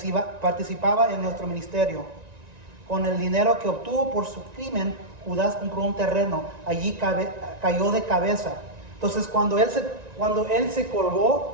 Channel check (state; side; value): late; left; 1.9 ms